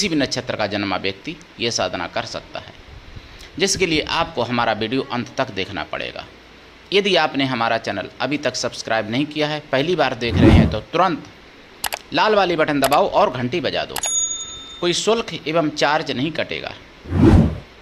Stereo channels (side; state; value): both; identical; correlation 1.00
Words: भी नक्षत्र का जन्मा व्यक्ति ये साधना कर सकता है, जिसके लिए आपको हमारा वीडियो अंत तक देखना पड़ेगा। यदि आपने हमारा चैनल अभी तक सब्सक्राइब नहीं किया है, पहली बार देख रहे हैं, तो तुरंत लाल वाली बटन दबाओ और घंटी बजा दो। कोई शुल्क एवं चार्ज नहीं कटेगा।